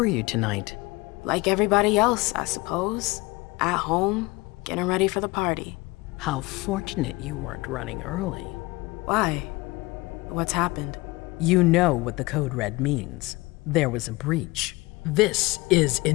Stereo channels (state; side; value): quieter; right; 22.6 dB